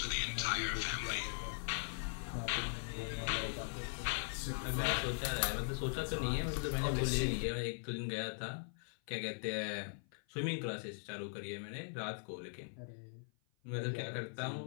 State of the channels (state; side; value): silent; right; 51 dB below the other